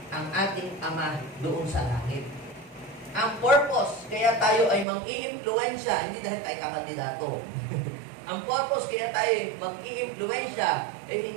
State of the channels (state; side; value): drops out; left; at 4.9 s